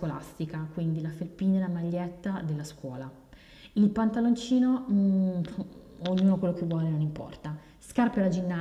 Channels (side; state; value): both; identical; correlation 1.00